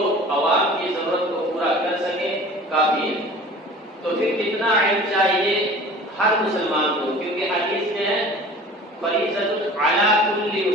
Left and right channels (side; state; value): both; normal; correlation 0.42